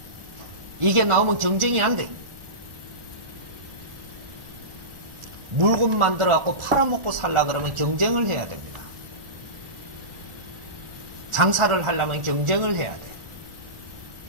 이게 나오면 경쟁이 안 돼. 물건 만들어갖고 팔아먹고 살라 그러면 경쟁을 해야 됩니다. 장사를 하려면 경쟁을 해야 돼.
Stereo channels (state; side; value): late; left; 1.4 ms